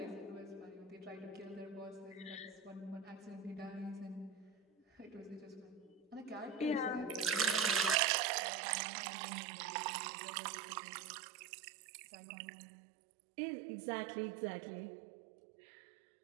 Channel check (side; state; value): left; drops out; at 8.0 s